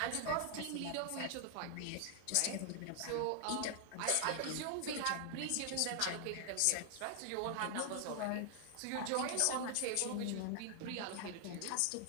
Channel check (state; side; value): different; both; correlation 0.00